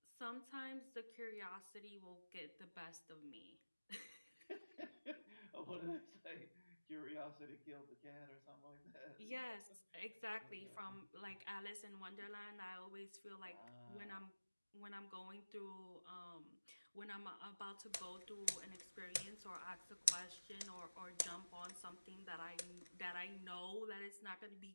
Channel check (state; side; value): inverted; both; correlation -1.00